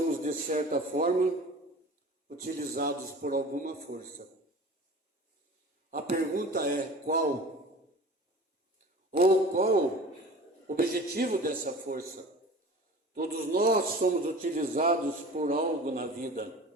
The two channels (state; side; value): normal; both; correlation 0.39